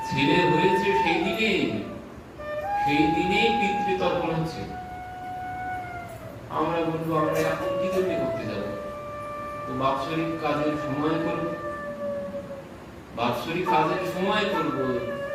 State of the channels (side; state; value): both; identical; correlation 1.00